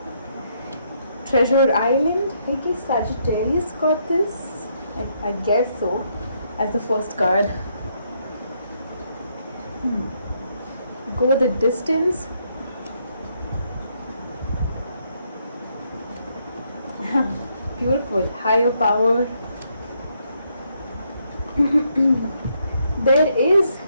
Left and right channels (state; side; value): inverted; both; correlation -0.74